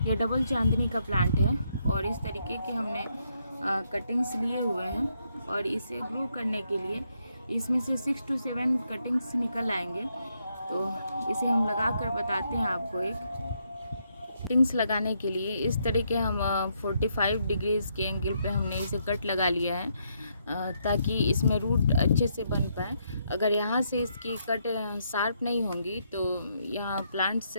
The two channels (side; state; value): both; inverted; correlation -0.76